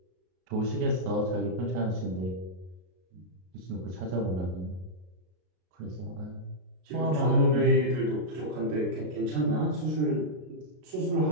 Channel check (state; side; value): late; left; 33 ms